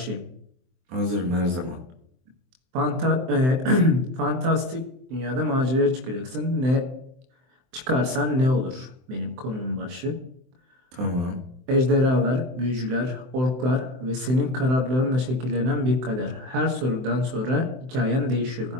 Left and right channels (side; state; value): left; late; 23 ms